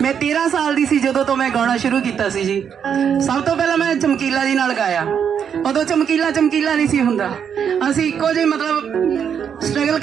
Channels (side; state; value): left; quieter; 7.8 dB